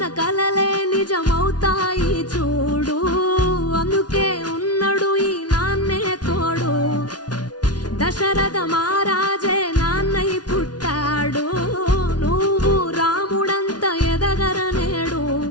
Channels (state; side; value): late; right; 0.69 ms